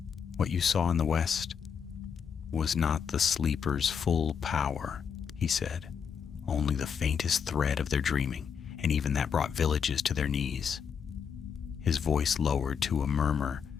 "What you saw in the west was not the sleeper's full power," he said, "only the faintest thread of their dreaming, and even that brought villages to their knees." His voice lowered to a murmur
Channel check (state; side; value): quieter; right; 6.9 dB